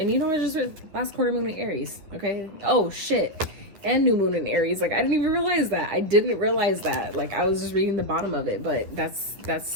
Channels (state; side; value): late; left; 11 ms